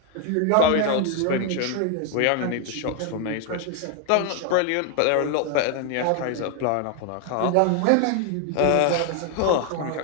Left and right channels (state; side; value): different; both; correlation 0.01